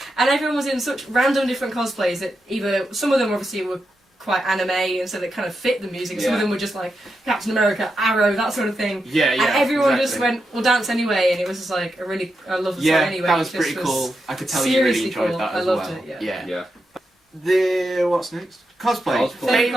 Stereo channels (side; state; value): both; normal; correlation 0.86